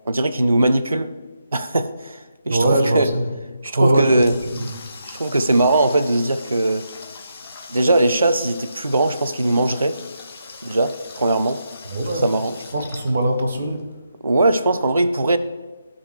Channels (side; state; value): both; inverted; correlation -0.82